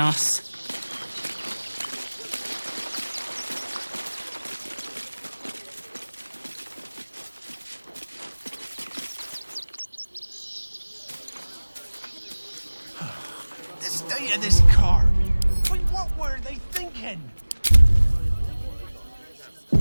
The state of this car. Wait, what were they thinking?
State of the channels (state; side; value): inverted; both; correlation -1.00